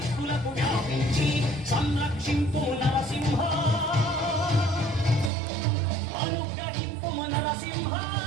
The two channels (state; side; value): drops out; left; at 5.3 s